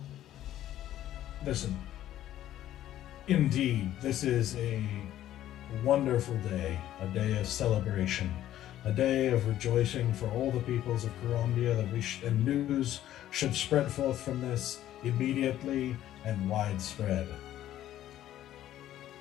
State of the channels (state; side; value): quieter; right; 12.7 dB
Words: listen, indeed, this is a wonderful day, a day of celebration, a day of rejoicing for all the peoples of Karandia, and news should spread forth from this immediately and widespread.